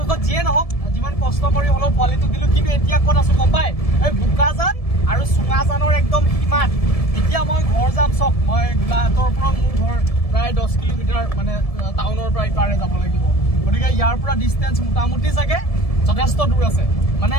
যিয়ে নহওক যিমান কষ্ট কৰি হ'লেও পোৱালিটো দিলোঁ কিন্তু এতিয়া ক'ত আছোঁ গম পাই এই বোকাজান আৰু চুঙাজানৰ একদম সীমাত এতিয়া মই ঘৰ যাম চক মই গোলাঘাটৰ পৰা মোৰ ঘৰ প্ৰায় 10 কিলোমিটাৰ মানে টাউনৰ পৰা ইপাৰে যাব লাগিব গতিকে ইয়াৰ পৰা ডিষ্টেঞ্চ মোটামুটি চাগে যথেষ্ট দূৰ আছে মানে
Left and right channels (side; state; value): right; late; 1.7 ms